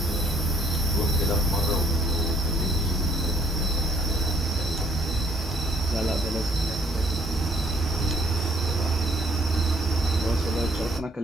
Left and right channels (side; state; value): both; normal; correlation 0.64